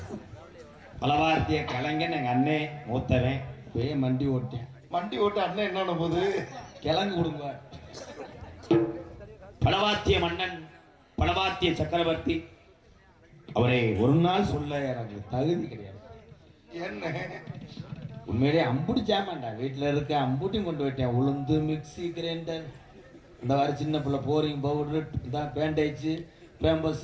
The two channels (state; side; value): identical; both; correlation 1.00